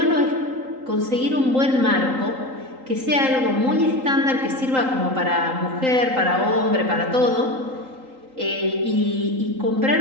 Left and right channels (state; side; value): late; left; 3.8 ms